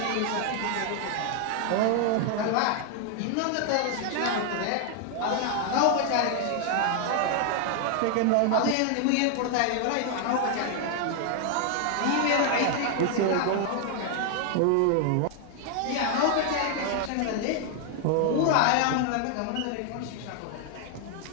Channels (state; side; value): different; both; correlation 0.00